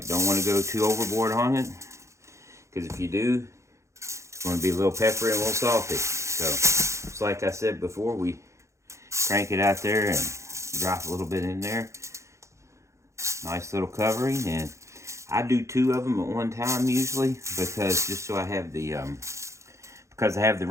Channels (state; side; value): late; left; 0.14 ms